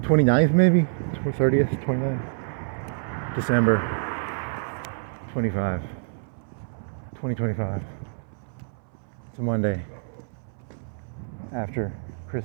29th maybe? 30th, 29th? December 2025. It's a Monday after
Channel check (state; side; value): silent; left; 60 dB below the other